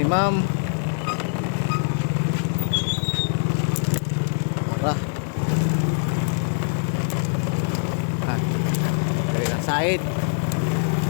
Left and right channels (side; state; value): right; silent; 58 dB below the other